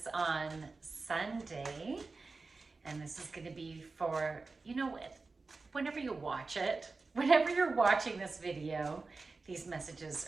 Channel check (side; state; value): left; quieter; 3.9 dB